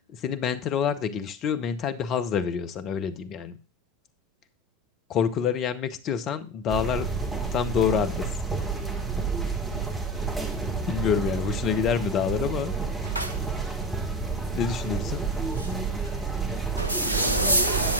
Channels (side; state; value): both; normal; correlation 0.24